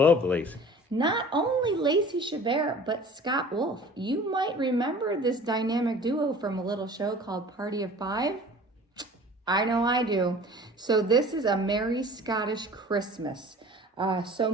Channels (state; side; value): normal; both; correlation 0.45